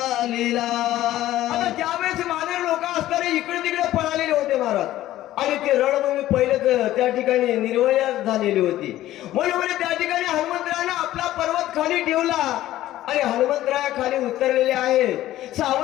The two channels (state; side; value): quieter; right; 14.3 dB